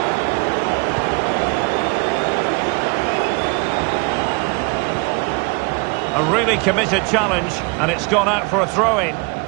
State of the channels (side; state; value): left; quieter; 29.6 dB